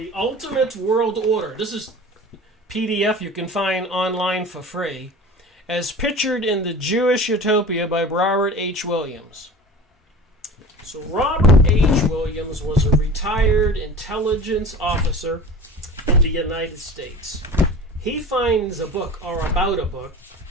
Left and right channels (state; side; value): normal; both; correlation 0.37